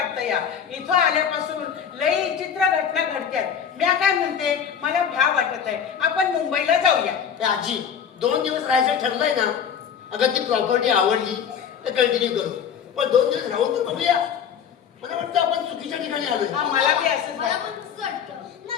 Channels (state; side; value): quieter; right; 7.8 dB